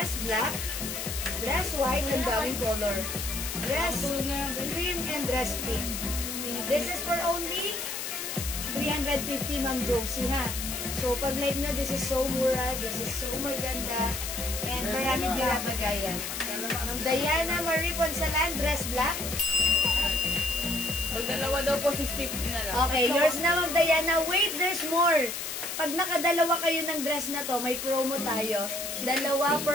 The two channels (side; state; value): left; noise; hiss, 5 dB below the sound